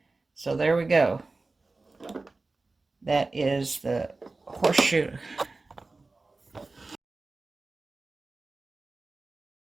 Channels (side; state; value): left; quieter; 3.5 dB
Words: so there we go. That is the horseshoe